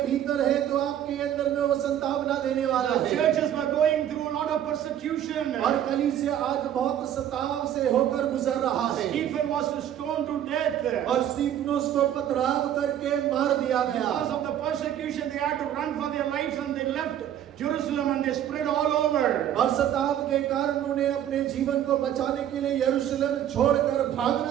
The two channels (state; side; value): quieter; left; 10.7 dB